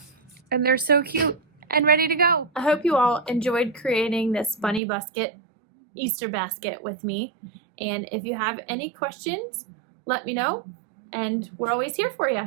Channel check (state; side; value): drops out; left; at 4.8 s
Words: And they're so cute and ready to go. I hope you all enjoyed creating this bunny basket, Easter basket with me. And if you have any questions, let me know, and we're always here for